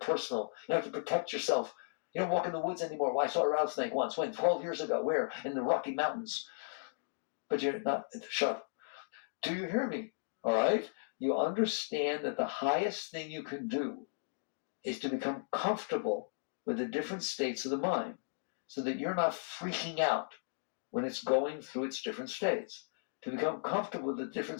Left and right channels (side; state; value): right; silent; digital silence